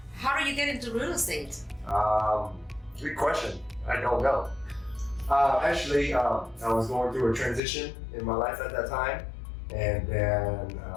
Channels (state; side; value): drops out; right; at 7.6 s